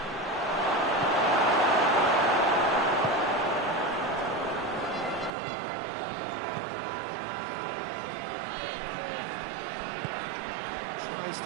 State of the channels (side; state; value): left; drops out; at 5.3 s